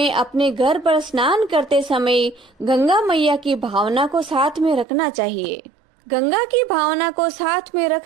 अपने घर पर स्नान करते समय गंगा मैया की भावना को साथ में रखना चाहिए। गंगा की भावना को साथ में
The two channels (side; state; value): left; drops out; at 4.9 s